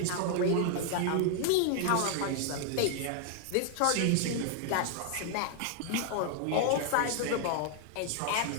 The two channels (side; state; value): both; different; correlation 0.00